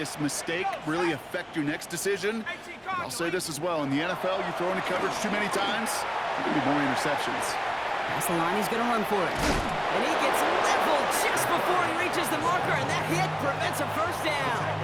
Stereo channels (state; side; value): identical; both; correlation 1.00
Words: mistake really affect your next decision. I'll say this as well. In the NFL, you throw into coverage too many times, there can be more interceptions. That's the line. He's going to run for it. And he gets leveled just before he reaches the marker, and that hit prevents a first down.